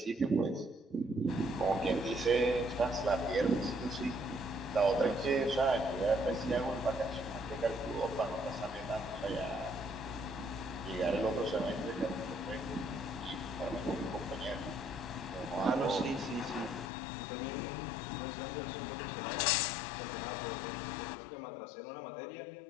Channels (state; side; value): drops out; right; at 16.9 s